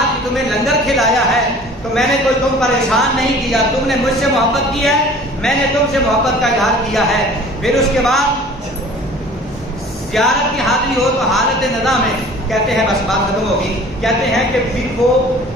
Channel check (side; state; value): both; normal; correlation 0.47